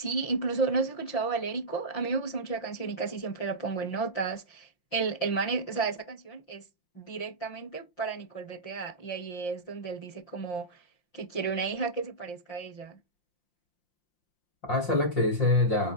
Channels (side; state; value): right; late; 5.7 ms